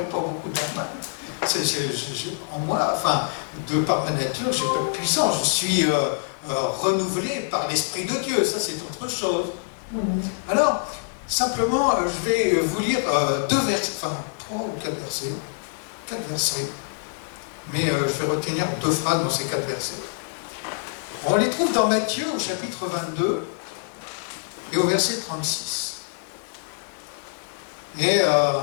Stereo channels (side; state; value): right; silent; digital silence